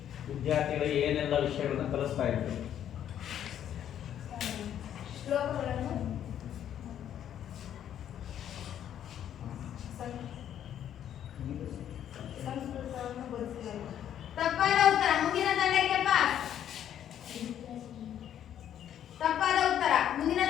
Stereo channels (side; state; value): right; quieter; 10.2 dB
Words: ವಿದ್ಯಾರ್ಥಿಗಳಿಗೆ ಏನೆಲ್ಲ ವಿಷಯಗಳನ್ನ ಕಲಿಸ್ತಾ ಇದ್ರು? ಶ್ಲೋಕಗಳನ್ನು, ಸಂಸ್ಕೃತವನ್ನು ಬೋಧಿಸಲಾಯಿತು. ತಪ್ಪಾದ ಉತ್ತರ. ಮುಂದಿನ ತಂಡಕ್ಕೆ ಪಾಸ್. ತಪ್ಪಾದ ಉತ್ತರ. ಮುಂದಿನ